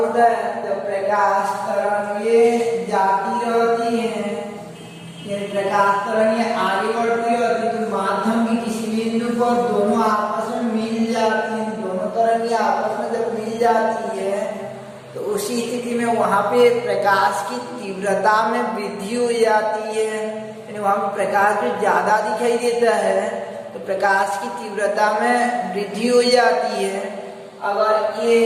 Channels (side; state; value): both; identical; correlation 1.00